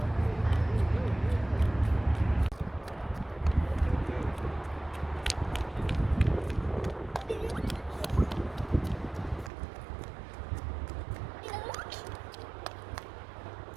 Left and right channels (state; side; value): drops out; left; at 9.5 s